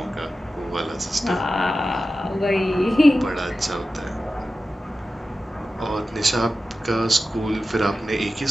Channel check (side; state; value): both; normal; correlation 0.93